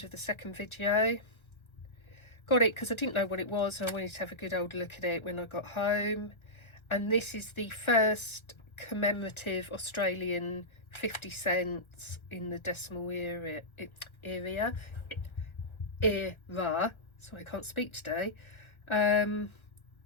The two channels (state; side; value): late; right; 1.3 ms